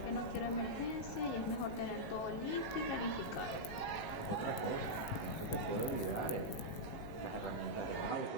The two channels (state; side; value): late; right; 18 ms